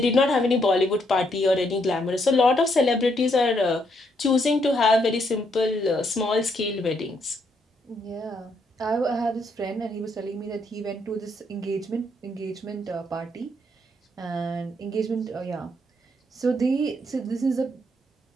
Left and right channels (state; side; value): normal; both; correlation 0.74